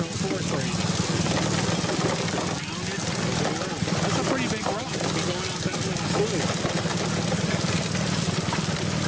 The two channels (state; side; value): identical; both; correlation 1.00